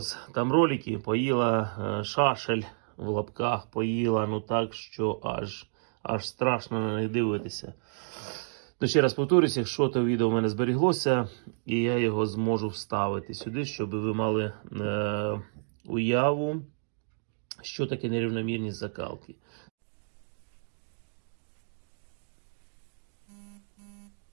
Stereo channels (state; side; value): silent; left; digital silence